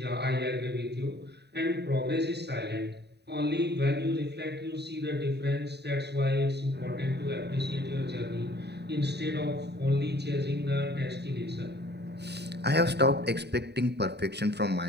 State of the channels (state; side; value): late; left; 0.49 ms